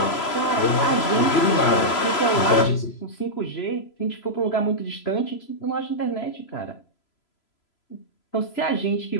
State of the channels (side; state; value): right; late; 3.0 ms